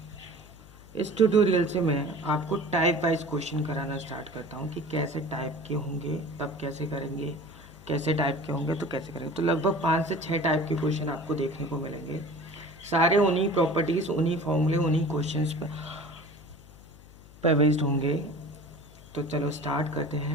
इस ट्यूटोरियल से मैं आपको टाइप वाइज क्वेश्चन कराना स्टार्ट करता हूँ कि कैसे टाइप के होंगे तब कैसे करेंगे, कैसे टाइप के होंगे तो कैसे करेंगे। तो लगभग 5 से 6 टाइप के क्वेश्चन आपको देखने को मिलेंगे, सारे उन्हीं प्रॉपर्टीज़, उन्हीं फॉर्मूले, उन्हीं क्वेश्चंस पर बेस्ड होंगे। तो चलो स्टार्ट करते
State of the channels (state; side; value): noise; left; hum, 21 dB below the sound